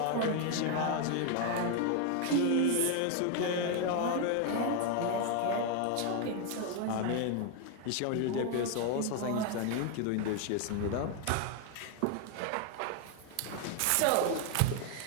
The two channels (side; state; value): both; different; correlation 0.01